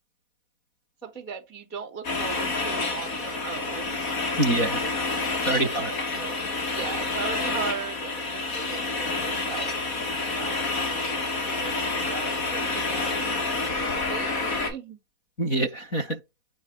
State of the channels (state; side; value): late; right; 4.1 ms